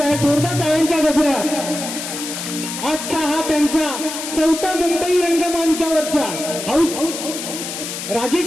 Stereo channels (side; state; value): left; noise; hiss, 7 dB below the sound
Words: आहे. जोरदार टाळ्यांच्या गजरात. आजचा हा त्यांचा 4था मुंबई रंगमंचावरचा हाऊस